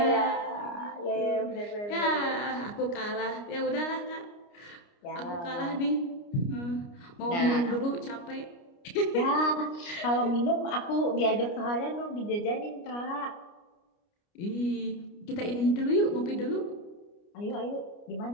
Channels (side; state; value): right; late; 29 ms